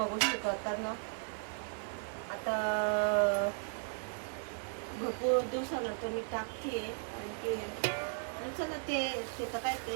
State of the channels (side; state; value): left; silent; digital silence